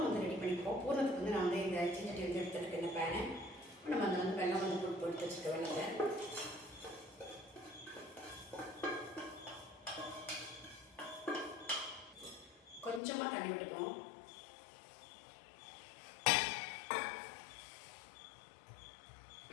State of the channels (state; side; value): drops out; right; at 13.0 s